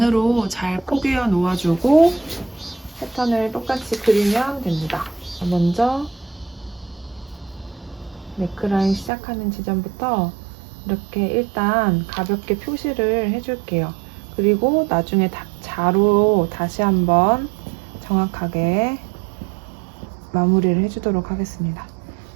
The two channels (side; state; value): left; drops out; at 9.1 s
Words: 잘 포개어 놓아주고 패턴을 똑같이 그리면 됩니다. 먼저 네크라인 시작하는 지점부터 이렇게 일단 가볍게 표시를 해줄게요. 그리고 나중에 자로 다시 한번 정확하게 마무리를 해주도록 하겠습니다.